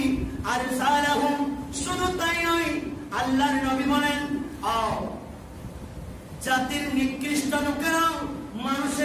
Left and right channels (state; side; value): identical; both; correlation 1.00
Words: আরসালাহুম, শুধু তাই নয়, আল্লাহর নবী বলেন, জাতির নিকৃষ্ট লোকেরা